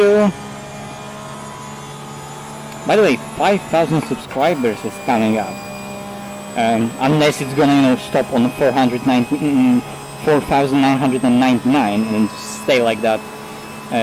By the way, 5,000 subscribers is coming up. Unless it's gonna, you know, stop on 4,999 and stay like that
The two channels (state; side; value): identical; both; correlation 1.00